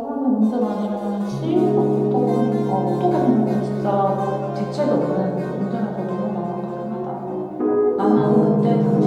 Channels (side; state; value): both; identical; correlation 1.00